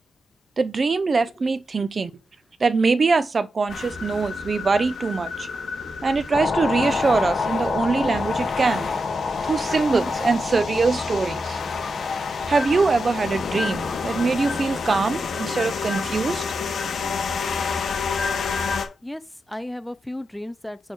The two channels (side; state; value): both; normal; correlation 0.88